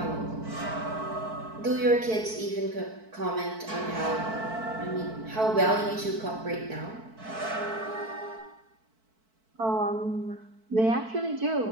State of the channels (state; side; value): late; left; 4.5 ms